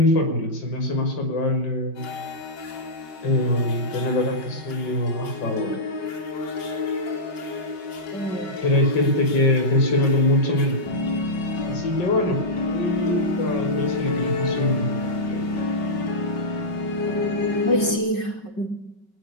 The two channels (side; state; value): right; late; 5.3 ms